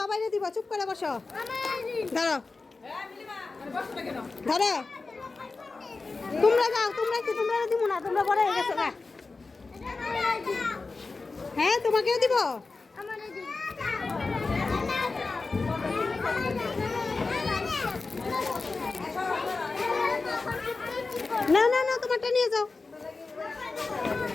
দিব, চুপ করে বসো। ধরো ধরো, তোমরা যাও, তোমরা কি তোমরা দিব না? তোমরা বড় হয়ে গেছো না? হ্যাঁ তোমাকেও দিব। না না না, তোমারটা নিয়ে যাও।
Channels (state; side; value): quieter; right; 3.9 dB